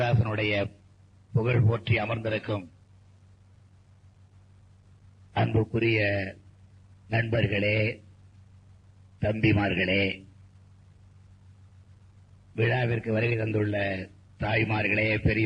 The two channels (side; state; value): both; identical; correlation 1.00